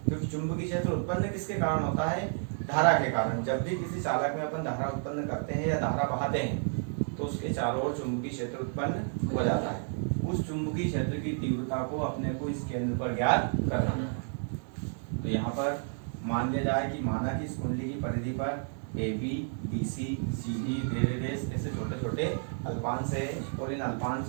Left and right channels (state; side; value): silent; left; 57 dB below the other